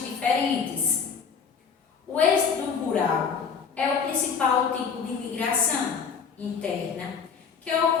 diferentes. O êxodo rural é o principal tipo de migração interna que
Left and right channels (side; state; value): right; quieter; 6.2 dB